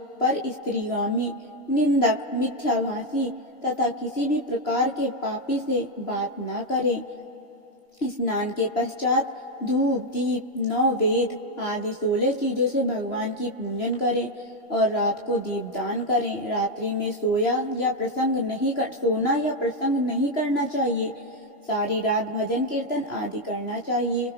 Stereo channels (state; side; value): late; right; 3.0 ms